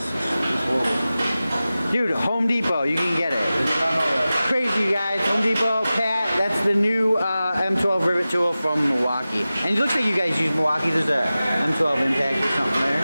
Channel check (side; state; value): both; inverted; correlation -0.96